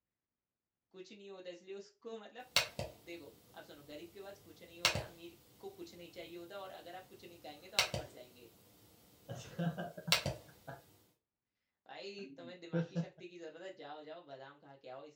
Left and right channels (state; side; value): identical; both; correlation 1.00